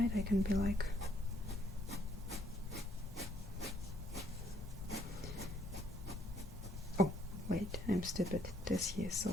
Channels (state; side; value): normal; both; correlation 0.68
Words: I can be like, oh wait, I'm stupid, this here is